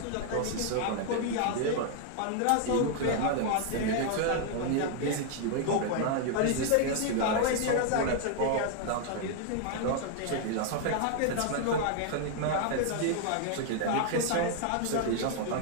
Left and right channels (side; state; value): both; different; correlation 0.00